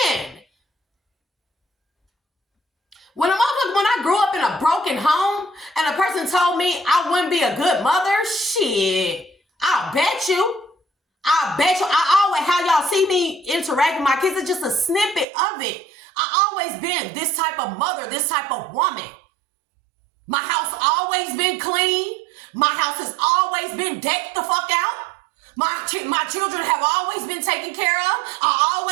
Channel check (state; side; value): drops out; left; at 15.2 s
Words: When I grew up in a broken home and a person told me I wouldn't be a good mother, shit, I'll bet you. I always, how y'all see me interact with my kids, it's just a snippet of it. I always been this type of mother, this type of woman. My house always been clean. My house has always been decked the fuck out. My children have always been taken care of. I